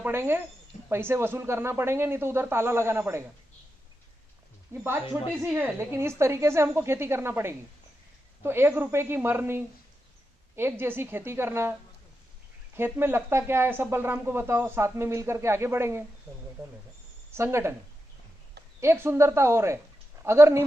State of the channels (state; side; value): normal; both; correlation 0.88